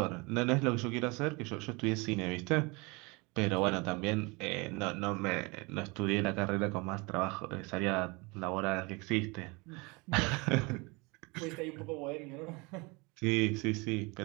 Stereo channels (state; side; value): quieter; left; 27.1 dB